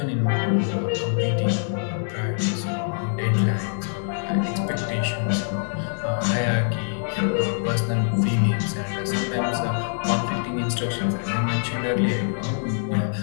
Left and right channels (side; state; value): right; silent; digital silence